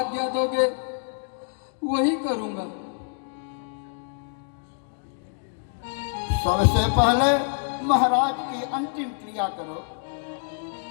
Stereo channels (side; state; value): right; silent; 61 dB below the other